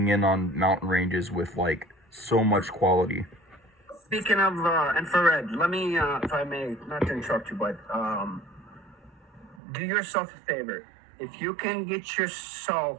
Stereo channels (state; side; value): drops out; left; at 9.6 s